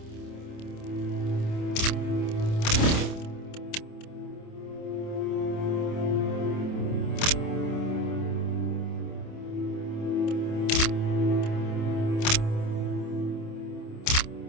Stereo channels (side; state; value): right; late; 27 ms